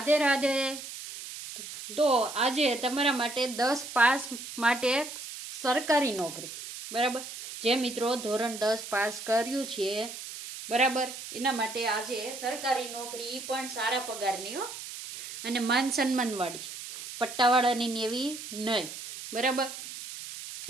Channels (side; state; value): right; noise; hiss, 10 dB below the sound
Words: રાધે. તો આજે તમારા માટે 10 પાસ માટે સરકારી નોકરી, બરાબર, જે મિત્રો ધોરણ 10 પાસ કર્યું છે, બરાબર, એના માટે આજે સરકારી નોકરી પણ સારા પગારની હો, અને માન સન્માનવાળી, પટ્ટાવાળાની એવી નહીં, બરાબર.